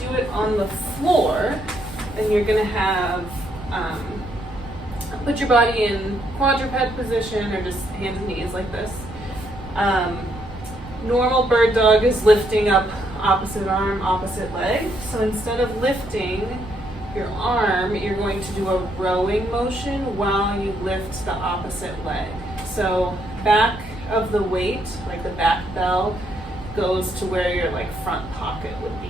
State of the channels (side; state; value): right; noise; rumble, 15 dB below the sound